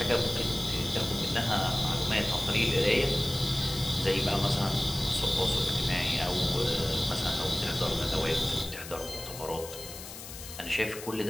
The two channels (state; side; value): noise; left; hiss, 12 dB below the sound